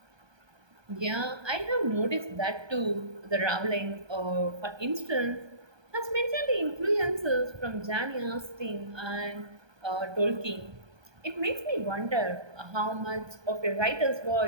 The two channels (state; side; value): late; left; 1.2 ms